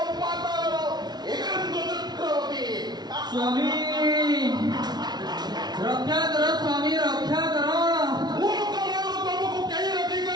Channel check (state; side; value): late; left; 0.20 ms